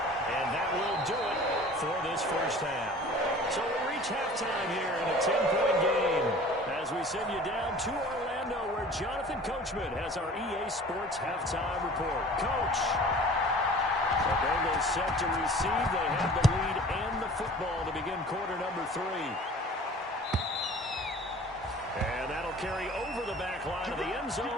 And that will do it for this first half. So we reach halftime here in a 10-point game as we send you down to Orlando where Jonathan Coachman has our EA Sports halftime report. Coach. The Bengals set to receive. They have the lead and the football to begin quarter number 3. And that'll carry over the back line of the end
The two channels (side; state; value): both; normal; correlation 0.45